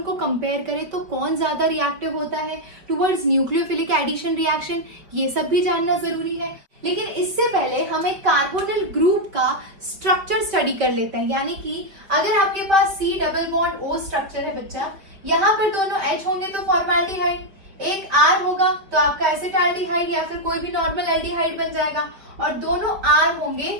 को कंपेयर करें तो कौन ज्यादा रिएक्टिव होता है टुवर्ड्स न्यूक्लियोफिलिक एडिशन रिएक्शन, ये सब भी जानना जरूरी है। लेकिन इससे पहले हम एक कार्बोनिल ग्रुप का स्ट्रक्चर स्टडी कर लेते हैं। यानी कि अगर आपके पास C double bond O structure है बच्चा, यहाँ पर दोनों H होंगे तो फॉर्मेल्डिहाइड, एक R होगा तो आपका एसिटाल्डिहाइड या फिर कोई भी नॉर्मल एल्डिहाइड बन जाएगा, और दोनों R होंगे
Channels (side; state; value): left; late; 5.1 ms